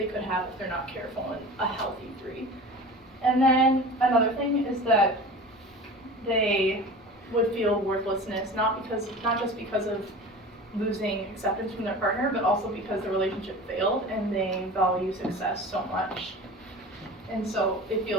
could have if they're not careful in a healthy 3. And then another thing is that they would feel worthlessness, not just because of losing acceptance from their partner, but also because the relationship failed and they value success so much. And so it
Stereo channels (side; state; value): both; normal; correlation 0.36